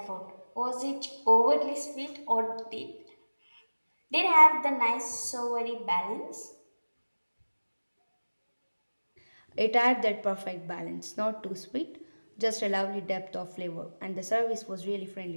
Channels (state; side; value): inverted; both; correlation -1.00